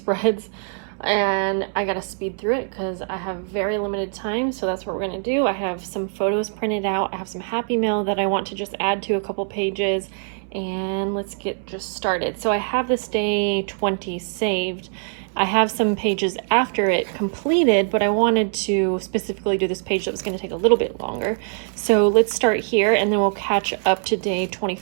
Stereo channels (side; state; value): left; silent; 64 dB below the other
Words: and I gotta speed through it because I have very limited time, so that's what we're gonna do. I have some photos printed out, I have some Happy Mail that I want to just add to a couple pages, and let's get just started. So I have this day 20 saved. I have some pages after it completed, but I wanted to specifically do this page that was going to take a little bit longer. So let's start here and then we'll catch up to day